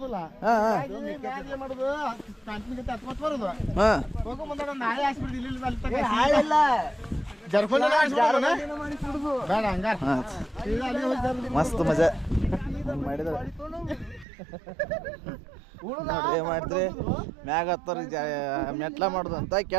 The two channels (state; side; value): drops out; left; at 14.2 s